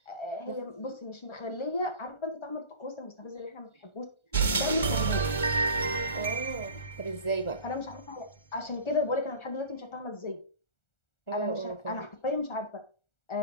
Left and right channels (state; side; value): late; right; 1.4 ms